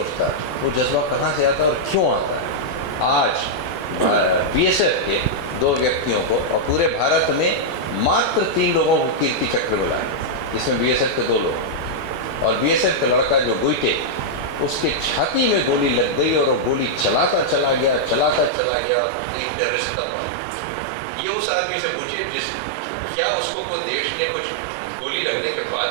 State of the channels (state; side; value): drops out; left; at 18.5 s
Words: वो जज्बा कहाँ से आता है और क्यों आता है. आज BSF के 2 व्यक्तियों को और पूरे भारत में मात्र 3 लोगों को कीर्ति चक्र मिला है, जिसमें BSF के 2 लोग और BSF का लड़का जो गुइटे, उसके छाती में गोली लग गई और वो गोली चलाता चला गया 3 टेररिस्ट तब मारा. ये उस आदमी से पूछिए क्या उसको कोई देश ने कुछ गोली लगने के बाद